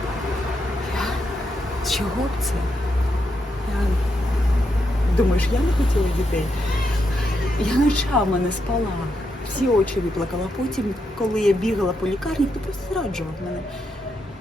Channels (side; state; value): both; normal; correlation 0.82